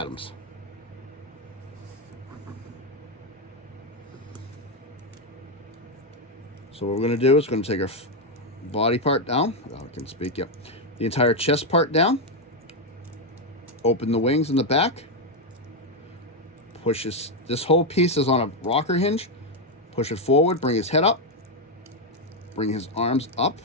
So what we're going to do is going to take our body part down. Oh, I can speak, yep. The entire chest part down. Open the wings in the back. Push this whole piece is on a rocker hinge. Push it forward, bring his head up. Bring his arms up.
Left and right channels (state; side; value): normal; both; correlation 0.04